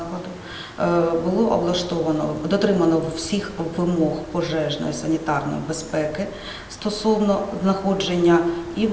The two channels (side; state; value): both; identical; correlation 1.00